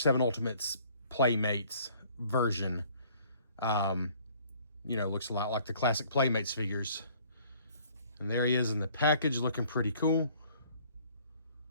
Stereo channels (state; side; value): inverted; both; correlation -0.57